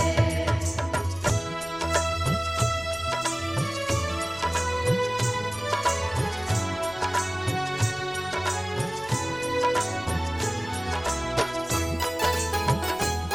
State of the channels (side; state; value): left; noise; rumble, 21 dB below the sound